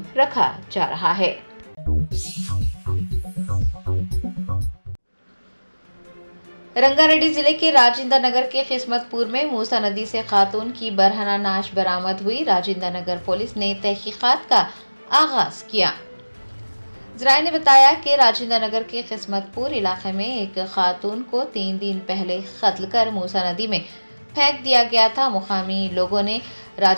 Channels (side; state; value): both; inverted; correlation -1.00